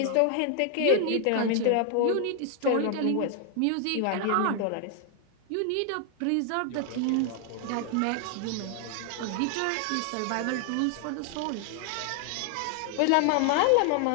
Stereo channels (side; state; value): both; different; correlation 0.00